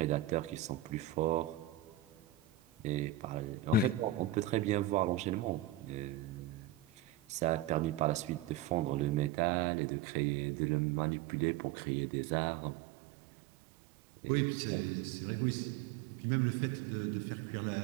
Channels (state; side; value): drops out; left; at 9.3 s